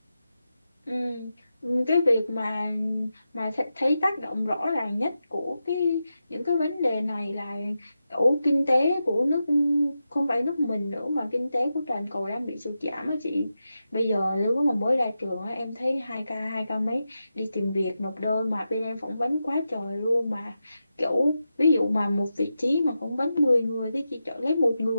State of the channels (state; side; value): inverted; both; correlation -0.90